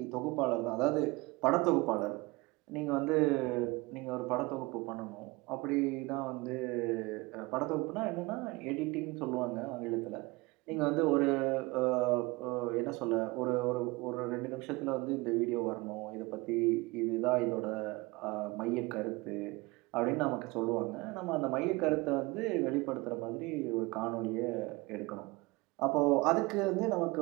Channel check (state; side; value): quieter; left; 23.6 dB